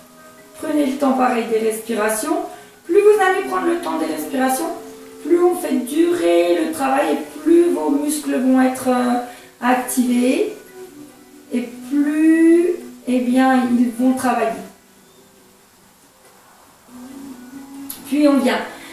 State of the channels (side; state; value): both; identical; correlation 1.00